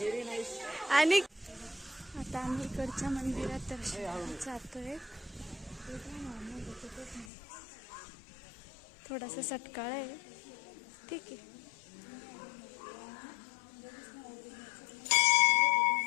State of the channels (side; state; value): right; drops out; at 7.2 s